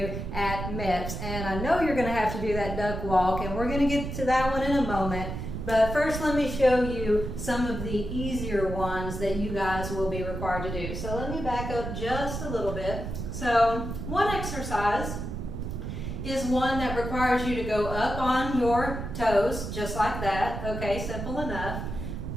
at MEPS. And I know you're going to have to do that duck walk, and we're going to get to that one in a moment. But first, let me show you some of the easier ones that you guys will be required to do. So let me back up just a little bit. So one exercise is one that requires you to go up on your toes, just like that. Okay, simple enough.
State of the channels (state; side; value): noise; right; rumble, 6 dB below the sound